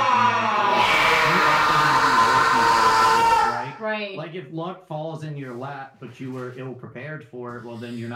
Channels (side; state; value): both; identical; correlation 1.00